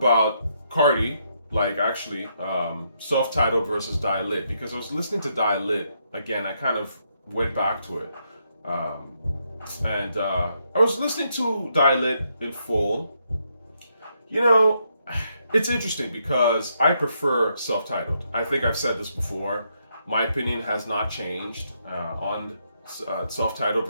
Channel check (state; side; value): inverted; both; correlation -0.77